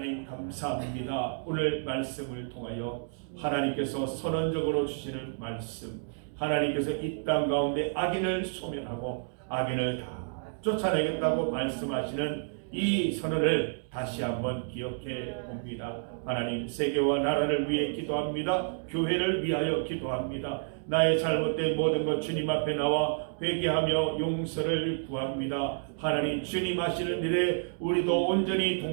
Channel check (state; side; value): silent; left; digital silence